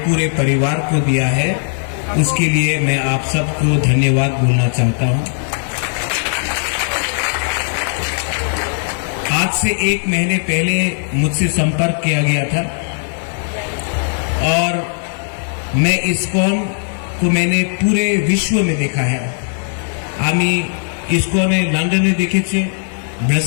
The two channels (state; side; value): silent; right; digital silence